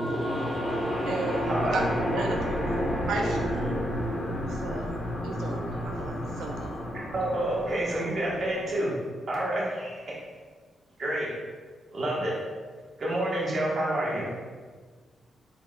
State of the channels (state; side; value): normal; both; correlation 0.79